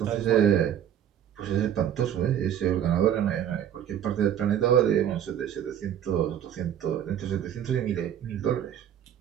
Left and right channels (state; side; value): quieter; left; 9.9 dB